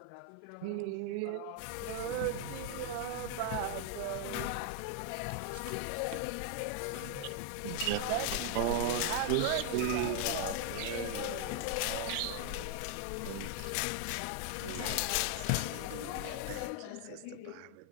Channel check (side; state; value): both; different; correlation 0.00